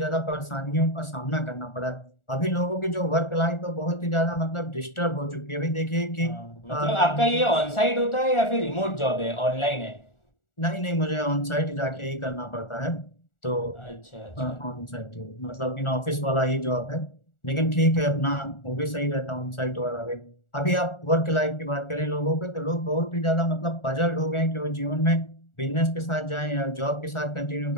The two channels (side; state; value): right; late; 1.4 ms